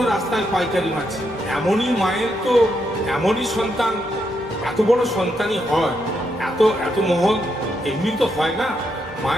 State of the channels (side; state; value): both; normal; correlation 0.80